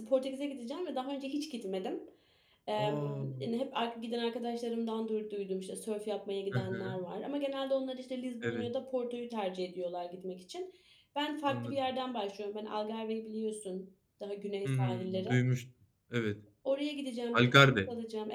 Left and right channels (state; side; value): identical; both; correlation 1.00